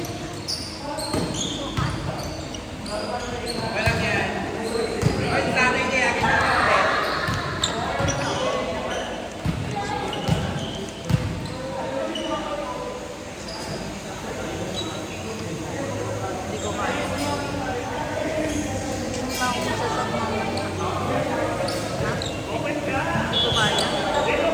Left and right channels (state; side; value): identical; both; correlation 1.00